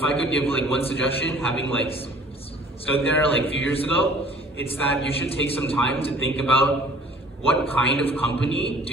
I could give like one suggestion, having like stood there like a few years ago, it's that you should take some time to think about what kind of company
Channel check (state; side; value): normal; both; correlation 0.51